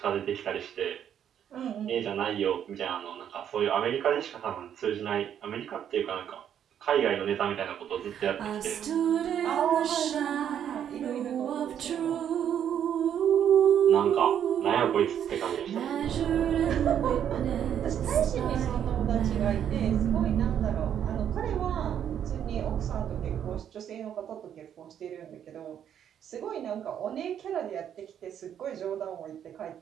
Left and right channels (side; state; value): left; quieter; 9.4 dB